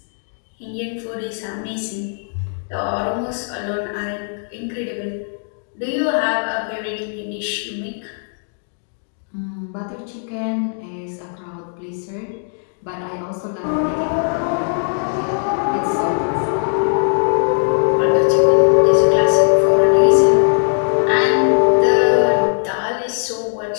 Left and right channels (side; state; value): right; silent; digital silence